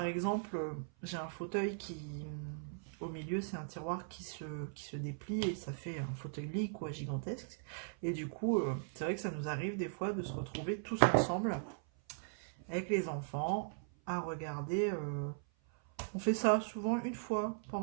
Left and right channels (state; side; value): silent; left; 52 dB below the other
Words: exemple, j'ai un fauteuil qui, au milieu, c'est un tiroir qui se déplie et ça fait un fauteuil lit quoi, gigantesque. Et du coup, c'est vrai que ça nous arrive des fois de se retrouver tous ensemble avec les enfants à regarder. On fait ça souvent une fois